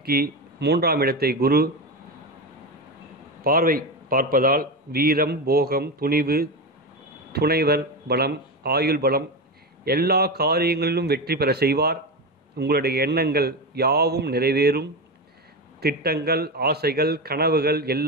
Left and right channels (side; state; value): both; normal; correlation 0.17